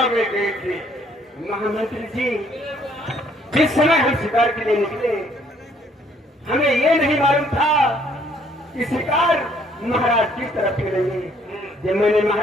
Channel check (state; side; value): normal; both; correlation 0.64